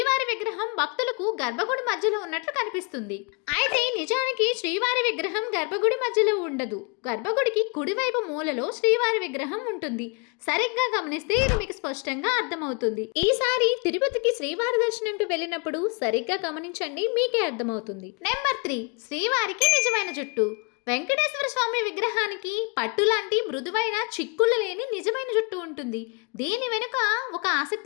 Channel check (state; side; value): quieter; right; 33.2 dB